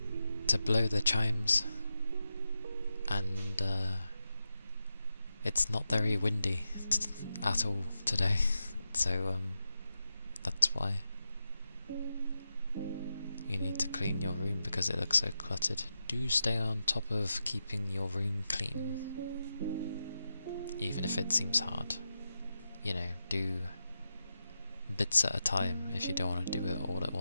to blow the chimes, and it's not very windy at all today, so that's why. You need to clean your room because it looks so cluttered. Do stay on top of keeping your room clean, even if it seems hard. you know, do bits at a time if you don't want to do it all at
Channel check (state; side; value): inverted; both; correlation -0.89